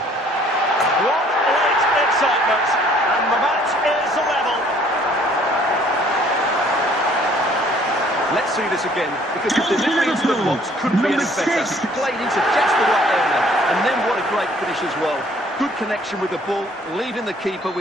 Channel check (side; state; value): both; normal; correlation 0.59